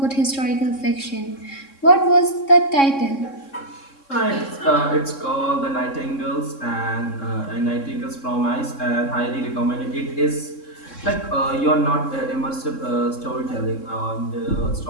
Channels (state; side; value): late; right; 3.6 ms